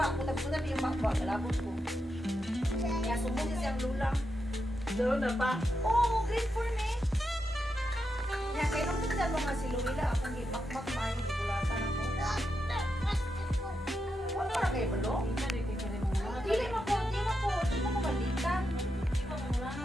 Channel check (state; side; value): normal; both; correlation 0.86